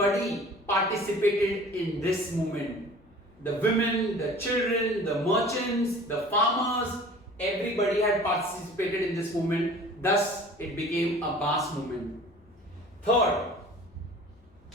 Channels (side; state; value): left; noise; rumble, 29 dB below the sound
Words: participated in this movement. The women, the children, the merchants, the farmers, everybody had participated in this movement. Thus, it became a mass movement. Third,